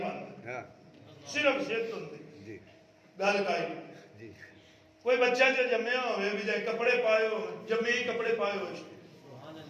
پاندے ہاں صرف زد ہوندی جی گل کائی جی کوئی بچہ جو جمعہ ہوئے بھی جائے کپڑے پائے ہو جمعی کپڑے پائے ہوئے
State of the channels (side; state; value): both; identical; correlation 1.00